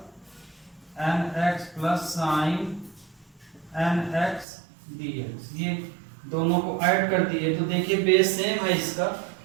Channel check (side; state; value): left; drops out; at 4.5 s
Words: n x plus sine n x dx। ये दोनों को ऐड कर दिए तो देखिए बेस सेम है इसका,